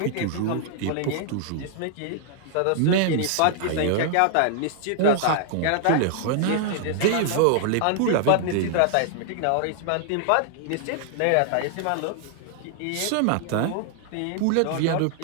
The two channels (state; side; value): different; both; correlation 0.00